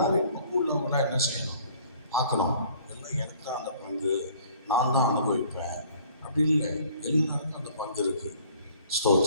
பங்கு உள்ளவங்களாம் என்ன செய்யணும்? பார்க்கணும். எல்லாம் எனக்கு தான் அந்த பங்கு, நான் தான் அனுபவிப்பேன் அப்படி இல்லை, எல்லாருக்கும் அந்த பங்கு இருக்கு.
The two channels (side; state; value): both; inverted; correlation -0.55